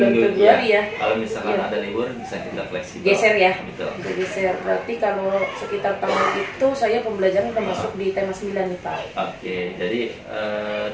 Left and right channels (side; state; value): both; identical; correlation 1.00